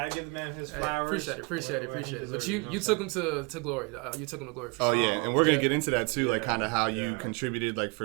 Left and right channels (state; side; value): quieter; left; 31.4 dB